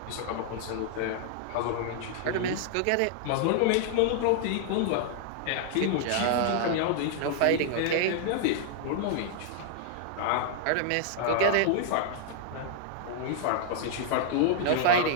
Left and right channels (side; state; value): both; different; correlation -0.01